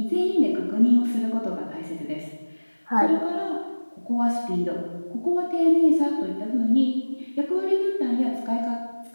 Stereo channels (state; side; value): inverted; both; correlation -1.00